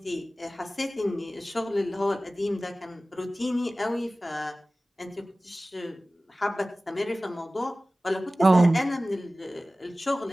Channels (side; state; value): both; normal; correlation 0.97